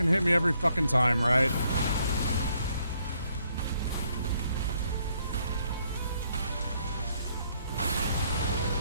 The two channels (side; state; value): both; inverted; correlation -0.71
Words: hit me every fucking time, right?